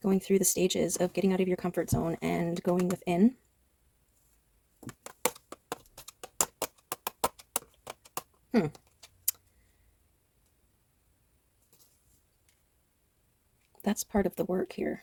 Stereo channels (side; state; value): both; identical; correlation 1.00